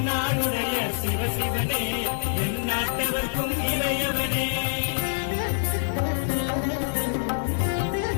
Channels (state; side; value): silent; right; digital silence